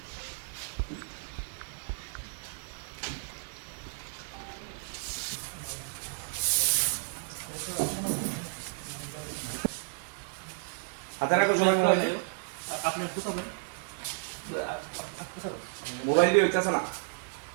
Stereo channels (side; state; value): left; silent; digital silence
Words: হাতে রাখো সবাই মোবাইল মোবাইল দিয়ে হইতেছে না